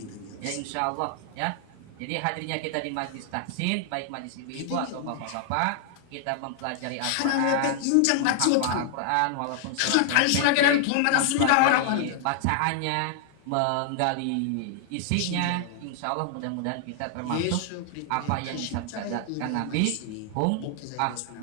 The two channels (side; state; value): both; different; correlation -0.01